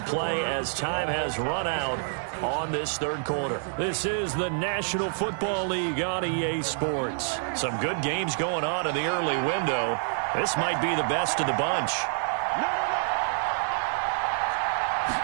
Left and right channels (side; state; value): left; silent; 60 dB below the other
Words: play as time has run out on this 3rd quarter. This is the National Football League on EA Sports. Some good games going on in the early window. This might be the best of the bunch.